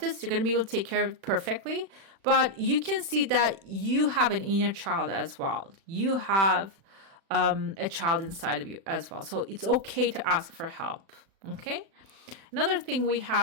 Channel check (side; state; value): left; late; 36 ms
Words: You're gonna be able to take care of it perfectly. But you can see that you have an inner child as well. You have a child inside of you as well. So it's okay to ask for help. Okay. Another thing we